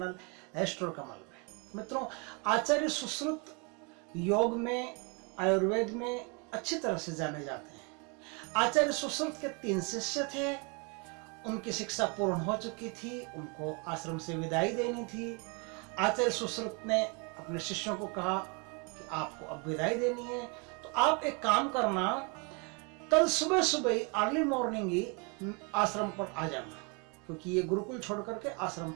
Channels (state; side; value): quieter; left; 33.2 dB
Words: एस्ट्रो कमल में। मित्रों, आचार्य सुश्रुत योग में, आयुर्वेद में अच्छी तरह से जाने जाते हैं। आचार्य सुश्रुत के 3 शिष्य थे। उनकी शिक्षा पूर्ण हो चुकी थी, उनको आश्रम से विदाई देनी थी। आचार्य सुश्रुत ने अपने शिष्यों को कहा कि आपको अब विदाई देनी है, तो आप एक काम करना, कल सुबह सुबह अर्ली मॉर्निंग ही आश्रम पर आ जाना, क्योंकि ये गुरुकुल छोड़ करके आश्रम